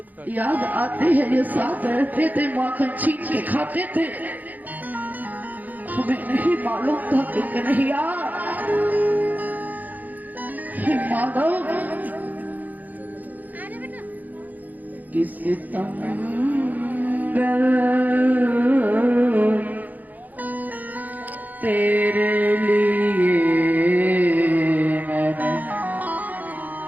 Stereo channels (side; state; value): left; late; 0.081 ms